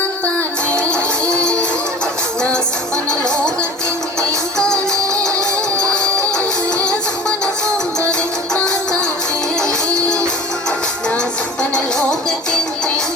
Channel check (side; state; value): both; normal; correlation 0.40